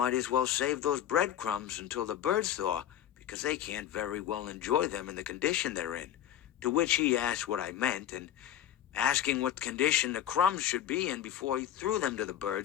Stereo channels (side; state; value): right; quieter; 11.0 dB